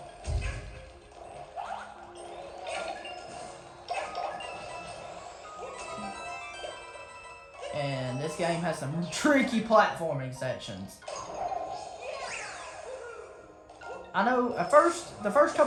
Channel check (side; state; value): both; identical; correlation 1.00